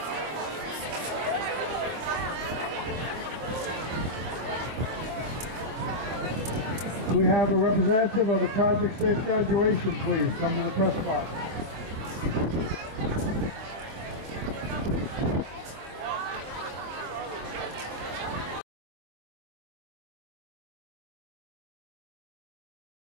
Do we have a representative of the Project Safe Graduation, please? Come to the press box.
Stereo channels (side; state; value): left; late; 25 ms